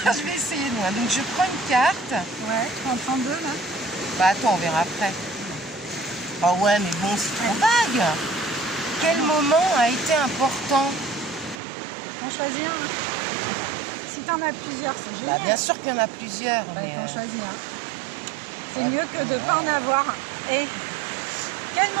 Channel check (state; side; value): drops out; left; at 11.6 s